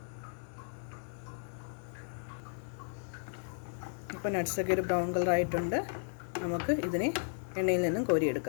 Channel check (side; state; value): right; silent; digital silence